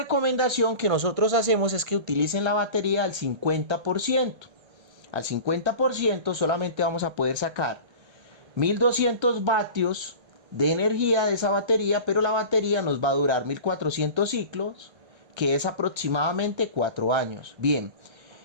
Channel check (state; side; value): late; left; 1.3 ms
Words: que nosotros hacemos es que utilicen la batería al 50%. Al 50% solamente vamos a poder sacar 1200 vatios de energía de esa batería, pero la batería nos va a durar 1400 ciclos, que es aproximadamente 4 años. Bien,